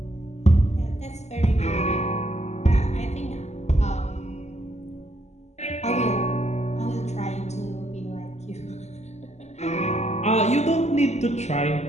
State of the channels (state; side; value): late; right; 0.33 ms